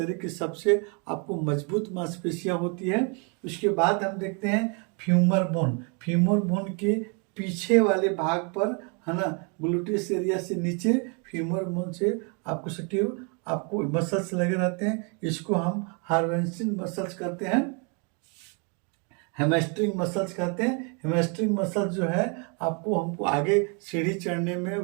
की सबसे आपको मजबूत मांसपेशियां होती है। उसके बाद हम देखते हैं फ्यूमर बोन के पीछे वाले भाग पर है ना, ग्लूटियस एरिया से नीचे फ्यूमर बोन से आपको सटिव आपको मसल्स लगे रहते हैं। इसको हम हार्वेंसिंग मसल्स कहते हैं, हेमस्ट्रिंग मसल्स कहते हैं। हेमस्ट्रिंग मसल्स जो है आपको हमको आगे सीढ़ी चढ़ने में,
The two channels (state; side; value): quieter; left; 35.8 dB